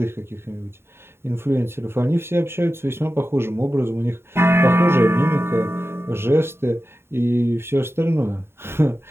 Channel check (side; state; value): left; late; 0.12 ms